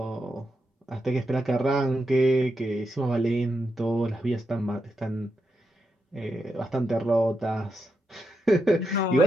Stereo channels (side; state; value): both; normal; correlation 0.85